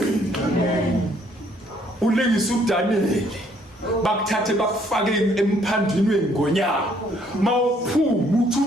Ulingisa uDaniel bakuthathe bakufake emphandini wengonyama, mawuphuma uthi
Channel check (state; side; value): normal; both; correlation 0.65